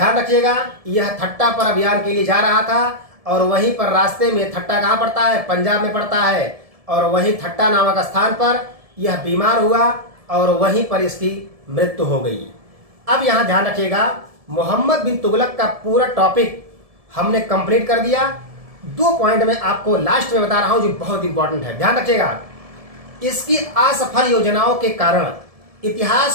रखिएगा, यह ठट्टा पर अभियान के लिए जा रहा था, और वहीं पर रास्ते में, ठट्टा कहाँ पड़ता है? पंजाब में पड़ता है, और वहीं ठट्टा नामक स्थान पर यह बीमार हुआ और वहीं पर इसकी मृत्यु हो गई। अब यहाँ ध्यान रखिएगा, मोहम्मद बिन तुगलक का पूरा टॉपिक हमने कंप्लीट कर दिया। 2 पॉइंट में आपको लास्ट में बता रहा हूं जो बहुत इंपॉर्टेंट है, ध्यान रखिएगा। इसकी असफल योजनाओं के कारण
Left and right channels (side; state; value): left; late; 1.7 ms